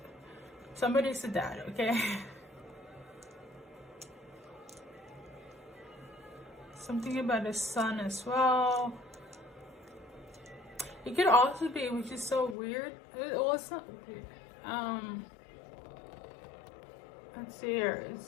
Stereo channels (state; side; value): drops out; right; at 12.6 s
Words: Somebody's a dad, okay? Something about a son as well. It could also be, which is so weird. It wasn't. Let's see here.